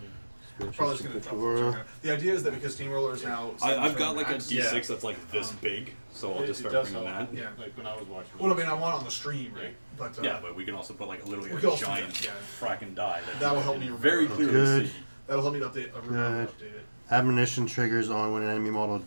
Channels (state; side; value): inverted; both; correlation -1.00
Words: Probably just gonna drop the turn. The idea is that because Steamroller is now. I've got like a max- D6 that's like this big, so I'll just It start does bringing help. that. Yeah. Like when I was watching. Well, I mean, I want it on the stream, right? But Yeah, but we can also put like literally We a can also do giant that, yeah. fracking die. That'll help me very remember. clearly Good. see. that'll help me to update. Remember to Good. update it. Admonition triggers on when an enemy model